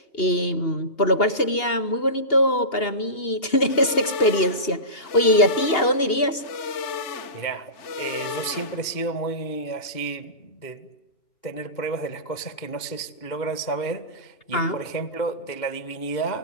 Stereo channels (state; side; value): late; right; 2.8 ms